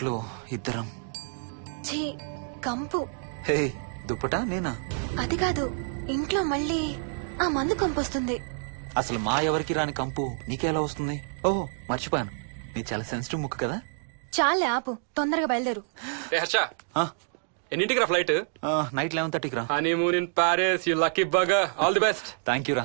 ఇద్దరం. ఛీ, కంపు. హే, దుప్పటా నేనా? అది కాదు, ఇంట్లో మళ్ళీ ఆ మందు కంపొస్తుంది. అసలు మా ఎవరికి రాని కంపు నీకెలా వస్తుంది? ఓహో, మర్చిపోయాను, నీ చాలా సెన్సిటివ్ ముక్కు కదా. చాలే ఆపు, తొందరగా బయలుదేరు. ఏ హర్ష, ఆ, ఎన్నింటికి రా ఫ్లైట్? నైట్ 11:30కి రా. Honeymoon in Paris, you lucky bugger. All the best. Thank you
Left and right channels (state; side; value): silent; left; digital silence